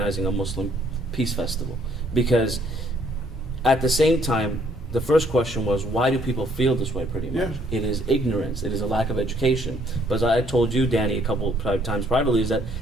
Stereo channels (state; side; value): normal; both; correlation 0.65